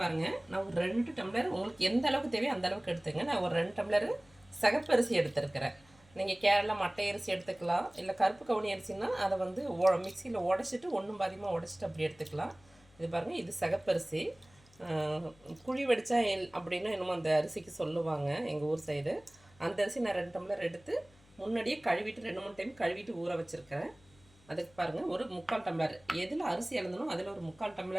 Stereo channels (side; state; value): left; noise; hum, 28 dB below the sound